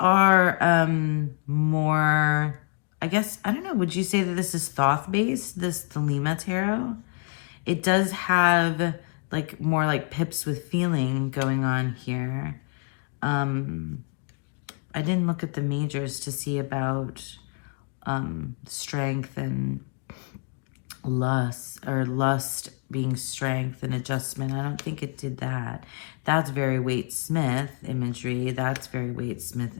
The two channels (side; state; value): right; quieter; 39.0 dB